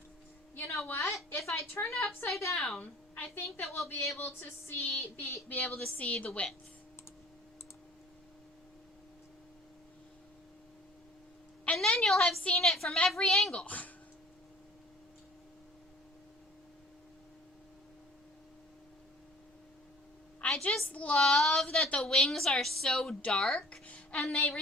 You know what? If I turn it upside down, I think that we'll be able to see be able to see the width. And then you'll have seen it from every angle. I just love that the wings are so dark and they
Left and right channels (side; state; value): both; normal; correlation 0.50